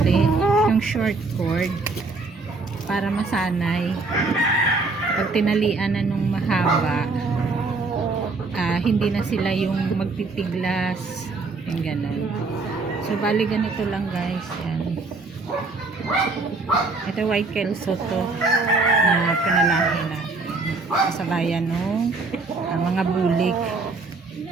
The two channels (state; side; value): quieter; left; 3.7 dB